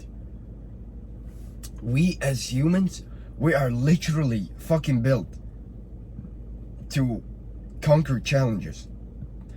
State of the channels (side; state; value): both; identical; correlation 1.00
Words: We as humans, we are literally fucking built to conquer challenges.